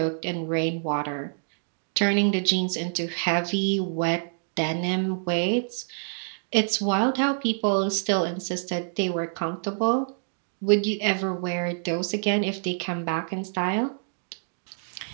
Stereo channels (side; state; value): left; silent; digital silence